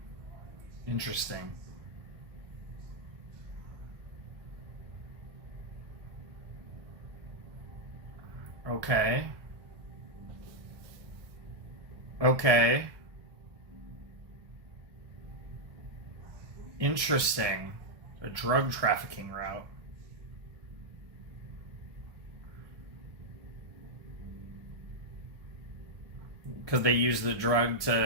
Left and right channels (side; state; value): left; late; 1.2 ms